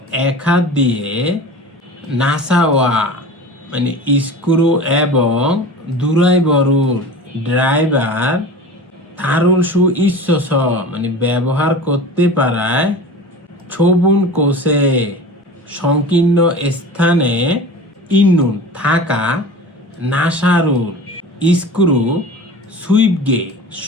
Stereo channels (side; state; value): both; normal; correlation 0.35